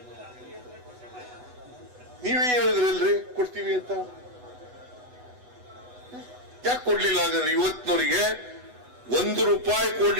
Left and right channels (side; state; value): left; late; 8.1 ms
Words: ನೀವೇ ಹೇಳಿದ್ರಲ್ರಿ ಕೊಡ್ತೀವಿ ಅಂತ, ಯಾಕೆ ಕೊಡ್ಲಿಲ್ಲ? ಹಾಗಾದ್ರೆ ಇವತ್ತಿನವರಿಗೆ ₹1